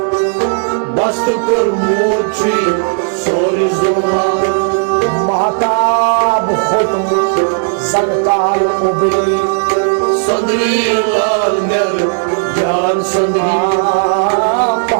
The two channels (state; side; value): silent; left; digital silence